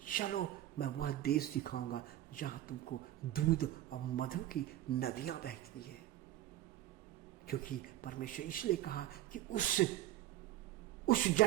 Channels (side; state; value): left; quieter; 14.0 dB